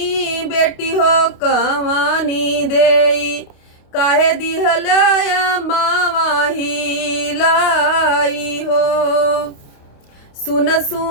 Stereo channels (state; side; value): late; right; 28 ms